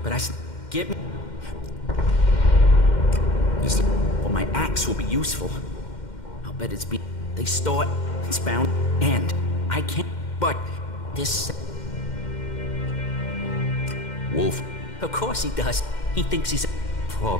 but get me. Well, my axe will be useful. I'll bet they store it, it's bound, and I can't, but this... Wolf. Of course he does. He thinks he's a pro.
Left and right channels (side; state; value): right; late; 2.1 ms